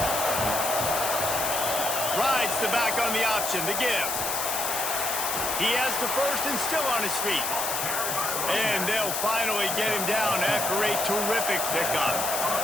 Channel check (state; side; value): noise; left; hiss, 1 dB below the sound